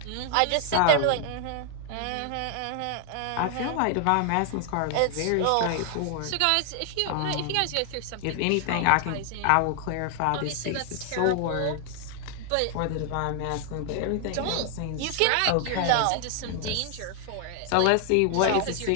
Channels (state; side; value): different; both; correlation 0.00